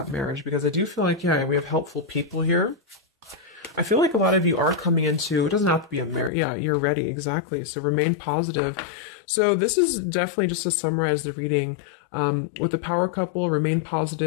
marriage because I do feel like, yeah, we have helpful people here. I feel like a lot of you are coming into, it doesn't have to be a marriage. Yeah, you're ready. Exactly. So remain positive. So this is definitely just to summarize the reading. With the power couple, remain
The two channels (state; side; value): drops out; right; at 6.3 s